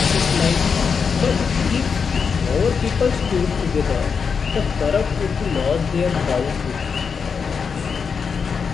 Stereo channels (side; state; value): right; quieter; 5.9 dB